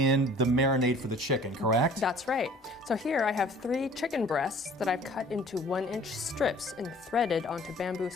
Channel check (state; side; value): normal; both; correlation 0.51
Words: the marinade for the chicken, correct? That's right. So here I have 3 chicken breasts that I've cut into 1-inch strips and threaded onto bamboo